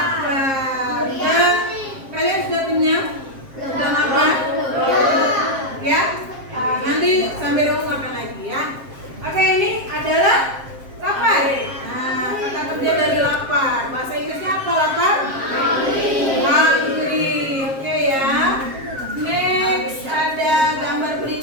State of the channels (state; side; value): late; left; 7.5 ms